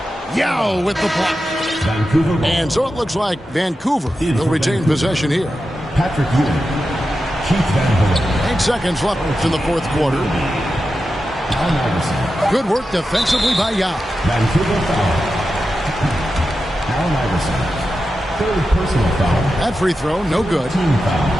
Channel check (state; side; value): normal; both; correlation 0.91